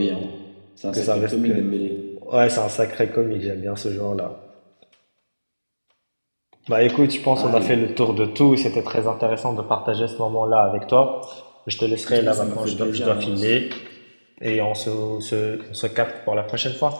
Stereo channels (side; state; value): both; inverted; correlation -1.00